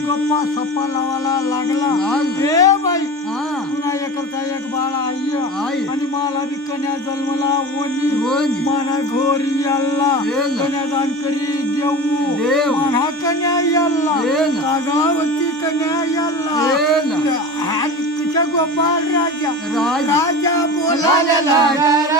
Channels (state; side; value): normal; both; correlation 0.31